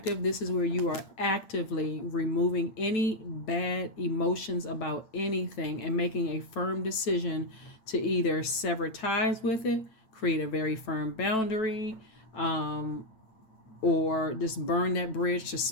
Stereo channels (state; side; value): late; right; 9.1 ms